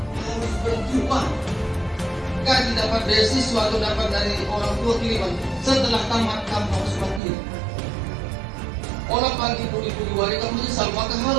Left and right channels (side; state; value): left; drops out; at 7.2 s